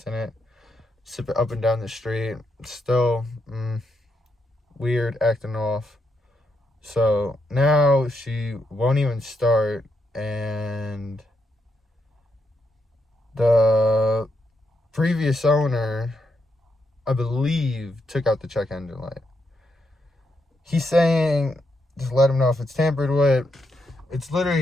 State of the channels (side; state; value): both; normal; correlation 0.81